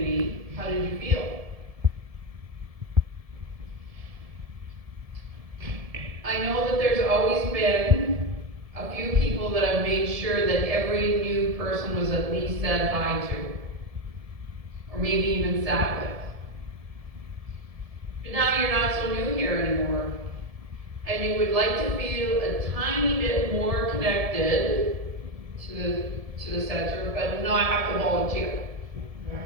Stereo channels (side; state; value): left; late; 1.7 ms